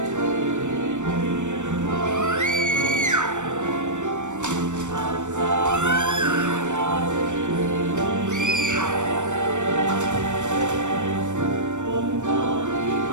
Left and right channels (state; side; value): late; left; 0.85 ms